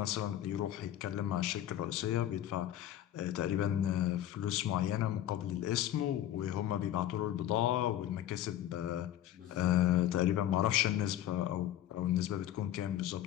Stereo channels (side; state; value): right; quieter; 12.2 dB